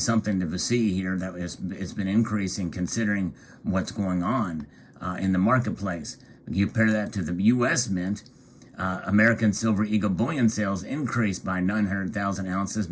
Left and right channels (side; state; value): both; identical; correlation 1.00